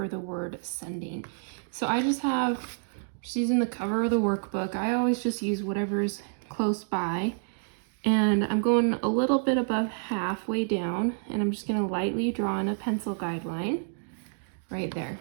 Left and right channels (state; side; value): silent; left; digital silence